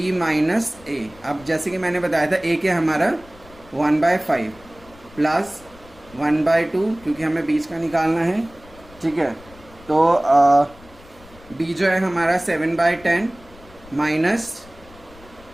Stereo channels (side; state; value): left; noise; rumble, 23 dB below the sound